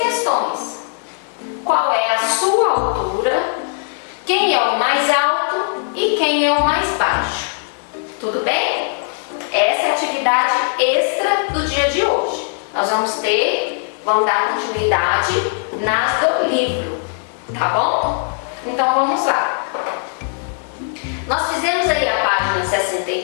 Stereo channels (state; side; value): silent; right; 56 dB below the other